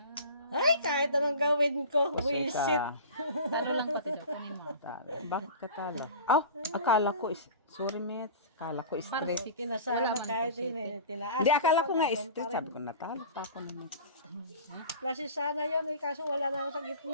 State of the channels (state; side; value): inverted; both; correlation -0.37